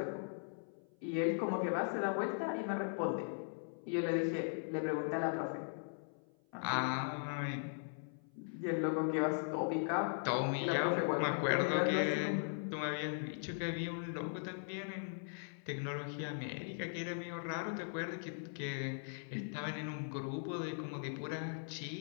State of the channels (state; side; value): silent; right; 52 dB below the other